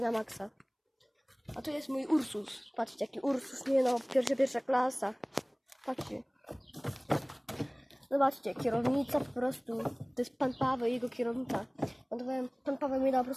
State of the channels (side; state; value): both; identical; correlation 1.00